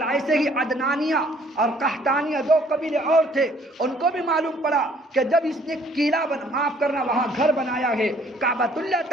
ایسے ہی عدنانیہ اور قحطانیہ 2 قبیلے اور تھے، ان کو بھی معلوم پڑا کہ جب اس نے قلعہ معاف کرنا وہاں گھر بنایا ہے، کعبۃ اللہ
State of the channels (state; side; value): normal; both; correlation 0.60